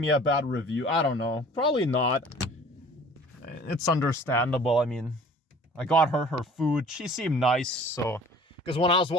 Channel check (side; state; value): both; normal; correlation 0.48